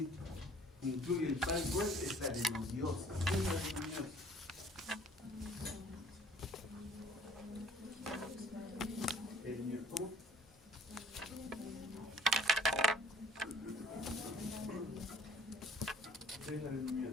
incluye el Parkinson es la adenomiosis. ¿Qué es la adenomiosis? ¿Cómo? ¿Qué es la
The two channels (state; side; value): normal; both; correlation 0.55